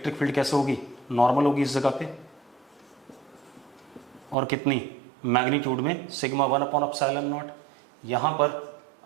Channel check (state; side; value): drops out; left; at 4.4 s